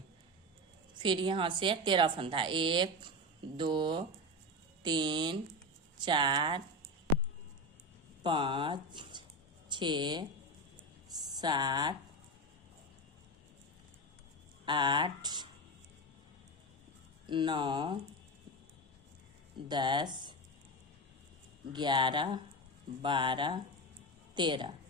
फिर यहाँ से 13 फंदा, 1 2 3 4 5 6 7 8 9 10 11 12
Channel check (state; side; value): normal; both; correlation 0.18